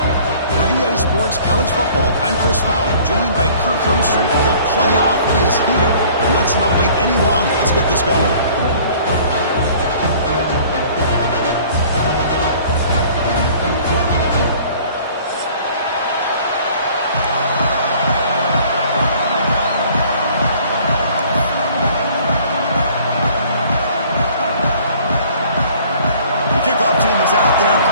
For EA Sports College Football, I'm Chris Fowler, joined by Kirk Hermstreet. The playoff is here, and let's not wait any longer. Let's get this going. Kickoff team is out there.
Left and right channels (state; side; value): inverted; both; correlation -0.52